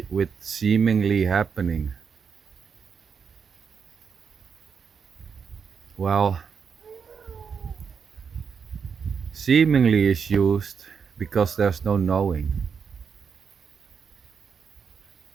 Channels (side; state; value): left; quieter; 6.4 dB